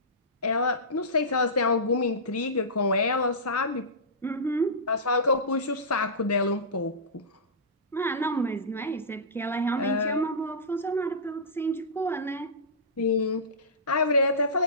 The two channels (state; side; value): normal; both; correlation -0.18